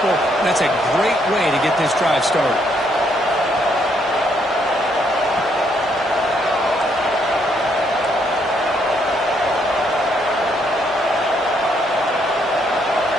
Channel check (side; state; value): both; normal; correlation 0.72